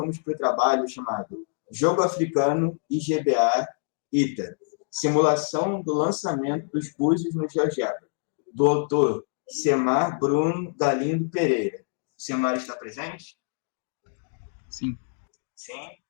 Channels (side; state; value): right; silent; digital silence